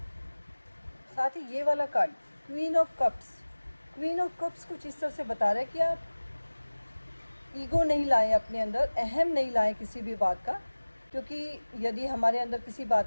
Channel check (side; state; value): both; inverted; correlation -1.00